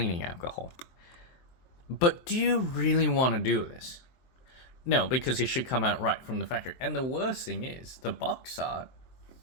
alcohol. But do you really want to do this? No, because it should come out right from the factory. And the worst thing is, the box art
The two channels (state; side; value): late; right; 23 ms